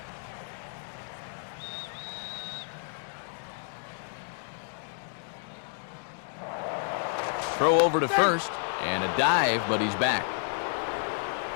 throw over to first, and a dive, but he's back.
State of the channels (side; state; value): right; silent; 56 dB below the other